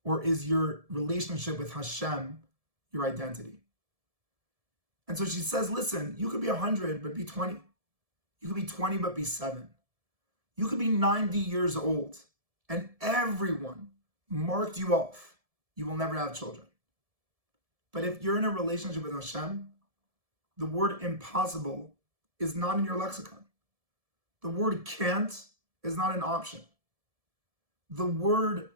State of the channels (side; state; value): left; late; 1.7 ms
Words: Or is your relationship with Hashem, your identity. And so she says, listen, you could be 100, but be 20. You could be 20, but be 7. You could be 90 years old, and everyone marked you off. You will never have children. But if you're in a relationship with Hashem, the word impossible is not in your lexicon. The word can't is not an option. The word